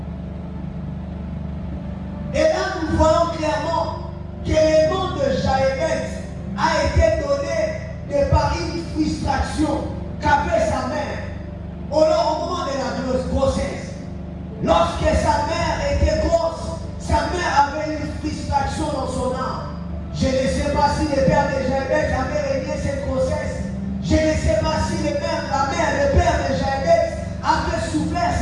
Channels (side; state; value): both; identical; correlation 1.00